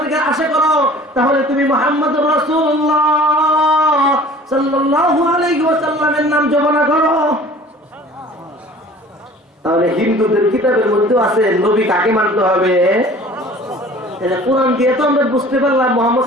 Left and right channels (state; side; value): normal; both; correlation 0.47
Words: আশা করো তাহলে তুমি মুহাম্মদুর রাসূলুল্লাহ সাল্লাল্লাহু আলাইহি ওয়াসাল্লামের নাম জপনা করো। তাহলে হিন্দুদের কিতাবের মধ্যে আছে নবী কাকে মানতে হবে। কোরআন দিয়ে তো আমরা বুঝতে পারলাম মুহাম্মদ